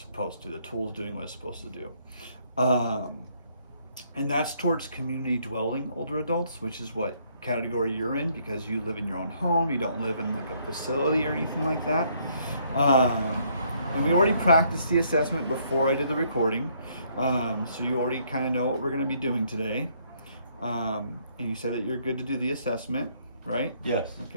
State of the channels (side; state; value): both; inverted; correlation -0.68